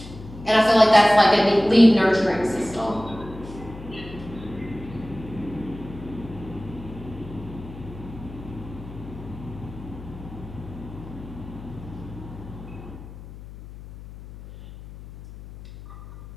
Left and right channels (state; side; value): noise; left; hum, 15 dB below the sound